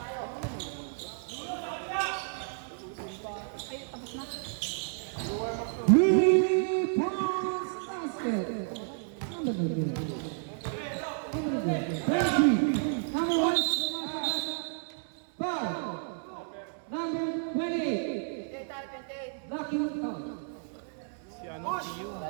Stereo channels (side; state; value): left; silent; digital silence